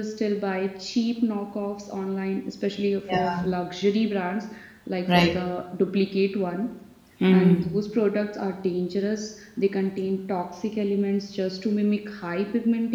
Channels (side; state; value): both; identical; correlation 1.00